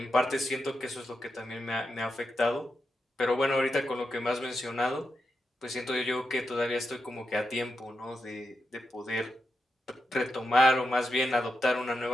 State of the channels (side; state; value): both; normal; correlation 0.87